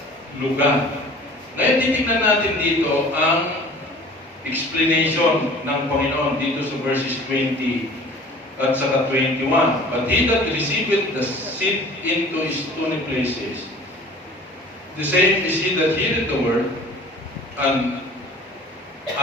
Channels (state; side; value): normal; both; correlation 0.46